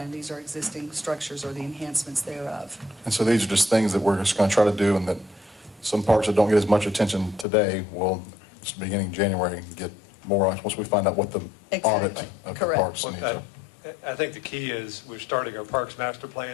These are existing structures or the enhancements thereof. And so these are just things that we're just going to try to do, and that some parks that don't get as much attention today will, beginning January, get more on once we find out what the audit Exactly. of the Correct. parks needs are. I think the key is we're starting our Parks Master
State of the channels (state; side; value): drops out; right; at 7.5 s